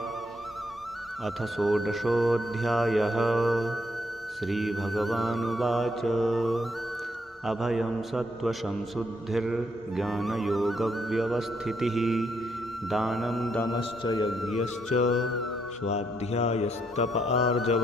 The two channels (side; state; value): both; normal; correlation 0.75